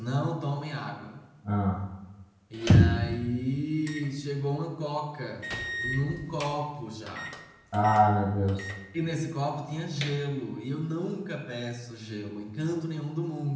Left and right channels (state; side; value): identical; both; correlation 1.00